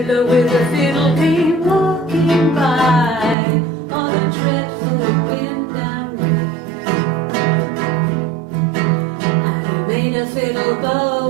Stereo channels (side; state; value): left; drops out; at 3.4 s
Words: with a fiddle came walking by, oh, the dreadful wind and rain. And he made a fiddle